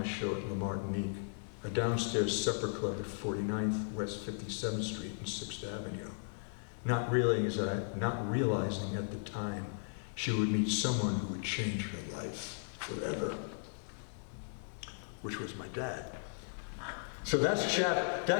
show at La Martinique, a downstairs supper club at 49th West 57th Street and 6th Avenue, not realizing at the time she would meet someone who would change her life forever, which was my dad. So that's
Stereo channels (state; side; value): silent; right; digital silence